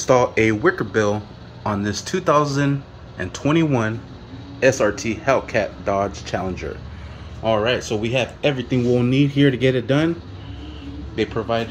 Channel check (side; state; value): both; identical; correlation 1.00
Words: a Wicker bill on this 2021 SRT Hellcat Dodge Challenger. Alright, so we have everything we'll need here to get it done. They